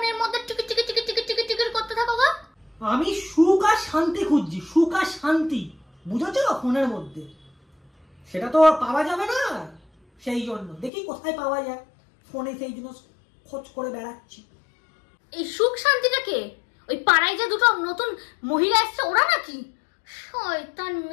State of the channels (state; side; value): drops out; right; at 10.9 s